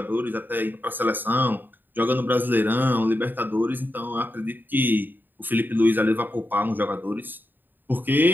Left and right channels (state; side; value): late; left; 0.092 ms